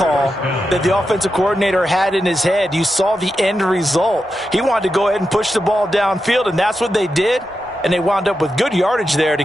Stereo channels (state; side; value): normal; both; correlation 0.88